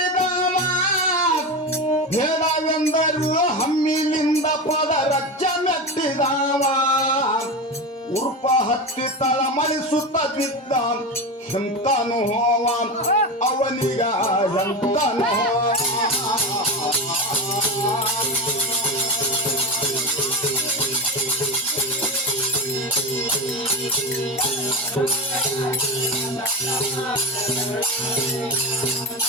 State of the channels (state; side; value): normal; both; correlation 0.20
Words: ಬೇಡವೆಂದರು ಹಮ್ಮಿಲಿಂದ ಪದ ರಕ್ಷ ಮೆಟ್ಟಿದಾವ ಉರ್ಪ ಹತ್ತಿ ತಳಮಳಿಸುತ್ತ ಬಿದ್ದ ಎಂತನು ಹೋವ ಅವನಿಗ ಎಂತನು